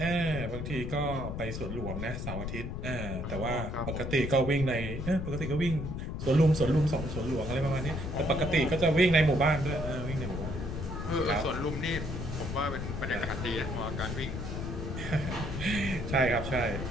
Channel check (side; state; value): left; noise; rumble, 5 dB below the sound